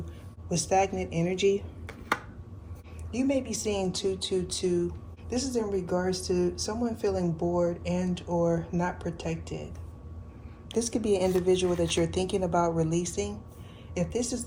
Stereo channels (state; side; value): identical; both; correlation 1.00